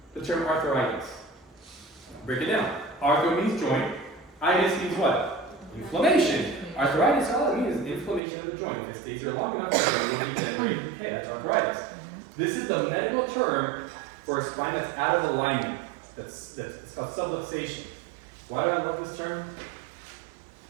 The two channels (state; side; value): drops out; left; at 8.2 s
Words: the term arthritis, break it down. Arthro means joint. Itis means what? Inflammation. Arthritis, all it means is inflammation of the joint. If it stays there long enough, it will degenerate. Okay, that's arthritis. This is the medical term for a spine that's out of alignment. It's called subluxation. Why do I love this term?